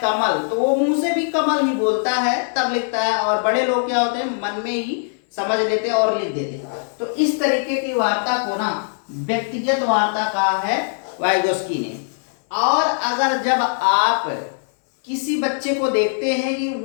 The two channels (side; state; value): right; silent; 60 dB below the other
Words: तो वो मुंह से भी कमल ही बोलता है तब लिखता है। और बड़े लोग क्या होते हैं, मन में ही समझ लेते और लिख देते। तो इस तरीके की वार्ता को ना व्यक्तिगत वार्ता कहा है वाइगोस्की ने। और अगर जब आप किसी बच्चे को देखते हैं कि